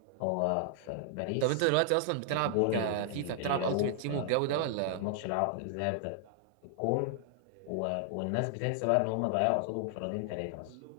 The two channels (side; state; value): both; different; correlation 0.00